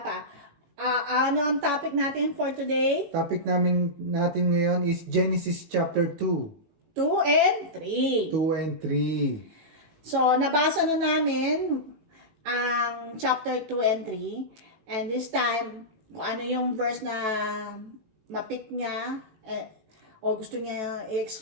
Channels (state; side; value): late; left; 18 ms